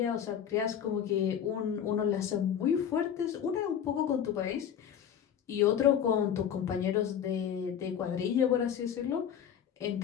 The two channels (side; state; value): right; quieter; 8.8 dB